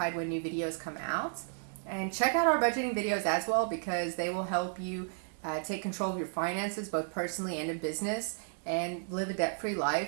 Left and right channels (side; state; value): left; silent; digital silence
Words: when new videos come out. And check out our budgeting videos as well, because they will help you take control of your finances, both personally and in business, and live a debt-free